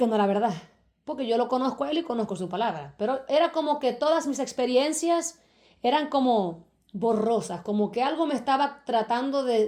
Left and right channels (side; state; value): both; identical; correlation 1.00